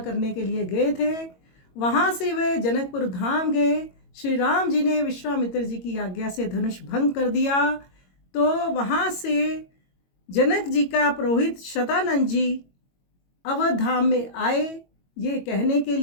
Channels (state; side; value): late; right; 22 ms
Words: करने के लिए गए थे। वहाँ से वे जनकपुर धाम गए। श्री राम जी ने विश्वामित्र जी की आज्ञा से धनुष भंग कर दिया। तो वहाँ से जनक जी का पुरोहित शतानंद जी अवध धाम में आए ये कहने के